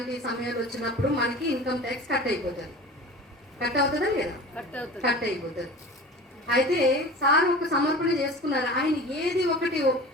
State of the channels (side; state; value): both; normal; correlation 0.37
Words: సమయాలు వచ్చినప్పుడు మనకి ఇన్కమ్ ట్యాక్స్ కట్ అయిపోతుంది. కట్ అవుతుందా లేదా? కట్ అయిపోతుంది. అయితే సార్ ఒక సమర్పణ చేసుకున్నారు. ఆయన ఏది ఒకటి